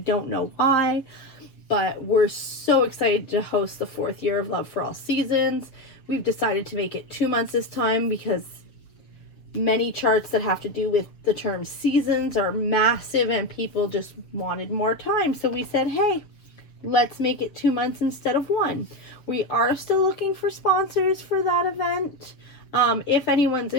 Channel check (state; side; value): late; right; 7.2 ms